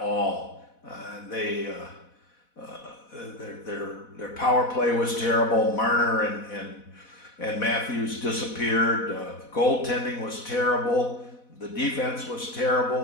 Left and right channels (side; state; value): right; late; 4.1 ms